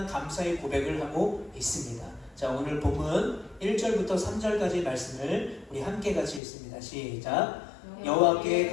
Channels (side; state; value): right; drops out; at 6.4 s